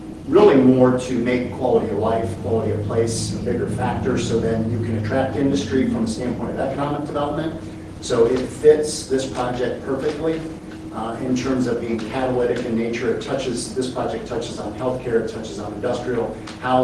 really more to make quality of life, quality of place a bigger factor, so then you can attract industry from a standpoint of economic development. So it fits this project perfectly in terms of being catalytic in nature. This project touches on healthcare, it touches on industrial,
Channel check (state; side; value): identical; both; correlation 1.00